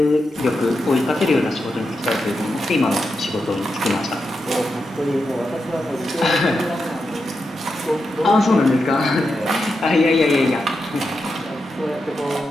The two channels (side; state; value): both; normal; correlation 0.87